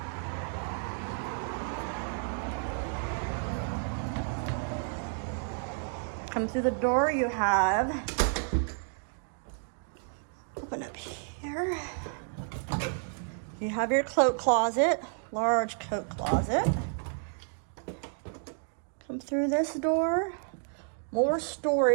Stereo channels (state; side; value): silent; left; 57 dB below the other